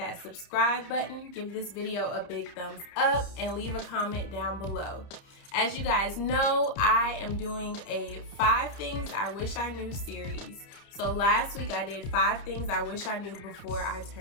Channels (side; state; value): right; late; 30 ms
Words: subscribe button, give this video a big thumbs up, and leave a comment down below. As you guys know, I am doing a 5 Things I Wish I Knew series. So last week I did 5 things I wish I knew before I